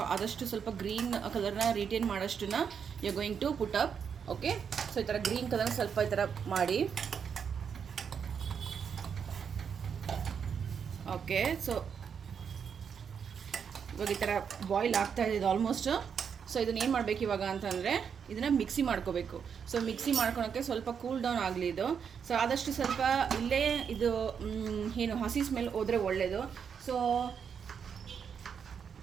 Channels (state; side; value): quieter; left; 7.0 dB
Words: ಆದಷ್ಟು ಸ್ವಲ್ಪ ಗ್ರೀನ್ ಕಲರ್ನ ರಿಟೇನ್ ಮಾಡೋಷ್ಟನ್ನ you going to put up. Okay, so ಈ ಥರ ಗ್ರೀನ್ ಕಲರ್ನ ಸ್ವಲ್ಪ ಈ ಥರ ಮಾಡಿ. ಓಕೆ, ಸೊ ಇವಾಗ ಈ ಥರ ಬಾಯ್ಲ್ ಆಗ್ತಾ ಇದೆ ಆಲ್ಮೋಸ್ಟ್. ಸೊ ಇದನ್ನ ಏನು ಮಾಡಬೇಕು ಇವಾಗ ಅಂತಂದರೆ, ಇದನ್ನು ಮಿಕ್ಸಿ ಮಾಡ್ಕೋಬೇಕು. ಸೊ ಮಿಕ್ಸಿ ಮಾಡ್ಕೊಳಕ್ಕೆ ಸ್ವಲ್ಪ ಕೂಲ್ ಡೌನ್ ಆಗಲಿ ಇದು. ಸೊ ಆದಷ್ಟು ಸ್ವಲ್ಪ ಇಲ್ಲೇ ಇದು ಏನು ಹಸಿ ಸ್ಮೆಲ್ ಹೋದರೆ ಒಳ್ಳೆಯದು. ಸೊ